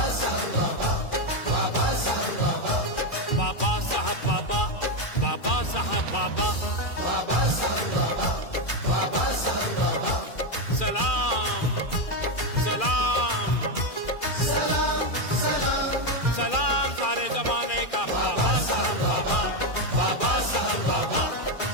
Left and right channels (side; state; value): right; late; 2.4 ms